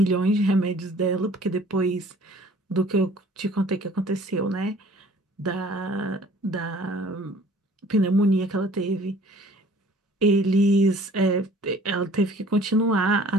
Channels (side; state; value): both; normal; correlation 0.52